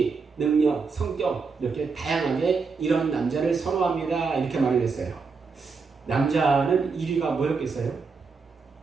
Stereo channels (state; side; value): quieter; left; 4.9 dB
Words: 능력, 성격 이렇게 다양하게 이런 남자를 선호합니다. 이렇게 말을 했어요. 남자는 1위가 뭐였겠어요?